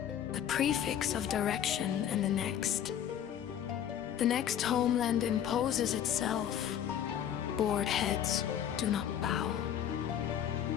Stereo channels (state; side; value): quieter; right; 9.9 dB